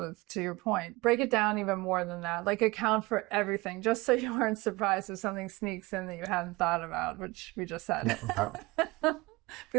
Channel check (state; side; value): quieter; left; 22.6 dB